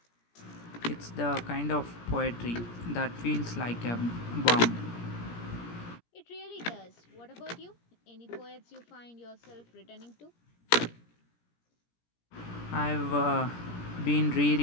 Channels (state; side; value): late; right; 17 ms